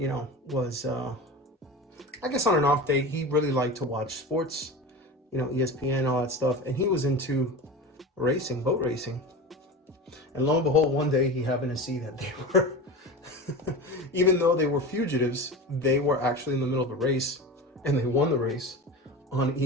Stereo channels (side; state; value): both; normal; correlation 0.29